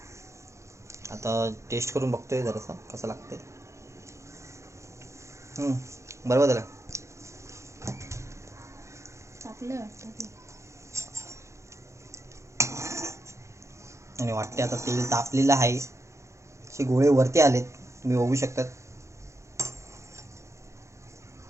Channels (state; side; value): late; left; 0.14 ms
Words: आता टेस्ट करून बघतोय जरासा कसं लागतंय. बरोबर झालं. टाकलं वाटतं ते. आणि वाटते आता तेल तापलेलं आहे. असे गोळे वरती आलेत, तुम्ही बघू शकतात.